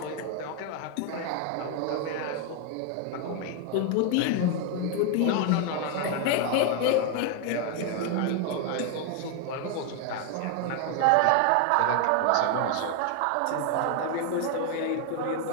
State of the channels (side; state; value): both; different; correlation 0.01